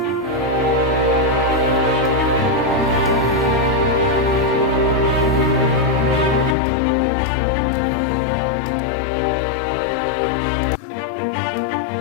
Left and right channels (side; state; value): right; drops out; at 6.6 s